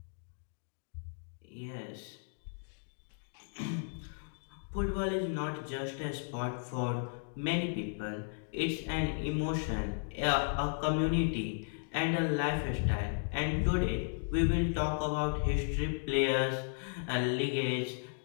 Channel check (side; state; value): right; silent; digital silence